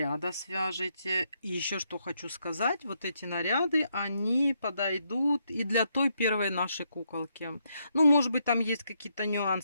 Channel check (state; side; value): inverted; both; correlation -0.77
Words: свяжете. И еще что хочу сказать, вот эти наряды, они подойдут и для той первой нашей куколки. Ну, может быть, там есть какие-то